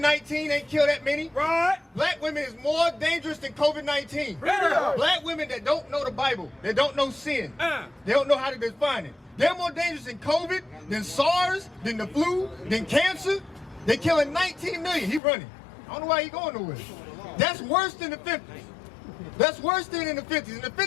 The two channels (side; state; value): right; drops out; at 15.2 s